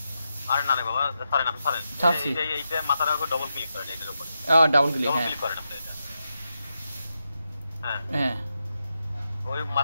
আরে না রে বাবা, সরেন আপনি সরেন। এইটা মাথার উপর ডবল ক্লিক করেন, এটার উপর ডাবল ক্লিক, ডবল হ্যাঁ ক্লিক করেন আপনি এটা। হ্যাঁ হ্যাঁ ওই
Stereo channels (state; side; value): inverted; both; correlation -0.87